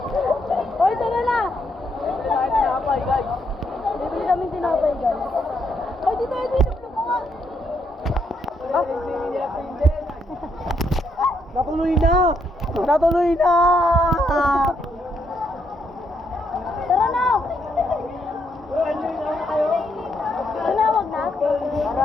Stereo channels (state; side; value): normal; both; correlation 0.76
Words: Hoy, tara na! Tinapay, guys. Bibili kami tinapay, guys. Hoy, dito, dito ko nga! Natuloy na! Natuloy na! Tara na! Tara na, wag na. Tara